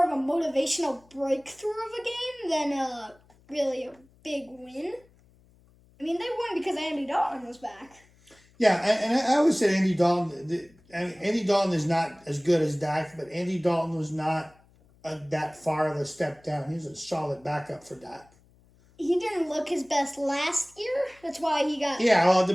of a motivational breakthrough of a game than really a big win. I mean, they won because Andy Dalton was back. Yeah, and I always said Andy Dalton. Andy Dalton is not as good as Dak, but Andy Dalton was not that far of a step down. He was a solid backup for Dak. He didn't look his best last year. That's why he got the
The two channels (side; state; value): left; noise; hum, 30 dB below the sound